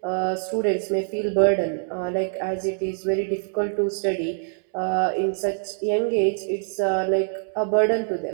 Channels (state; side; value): silent; left; 62 dB below the other